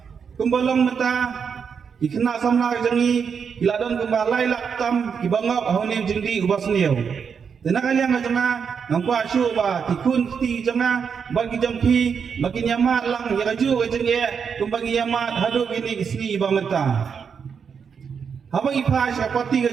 kumbalong mata ikna samna jangi iladon kembalai laktam ibangap ahonim jindi ubas niu Tenang kalian macamna nampak syuk ba tikun ti jamna bagi jampi bagi nyamat lang ya kaju kajeng ye kumbagi nyamat hadu gini isni ba menta. Habang ipa syapati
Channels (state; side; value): quieter; left; 6.5 dB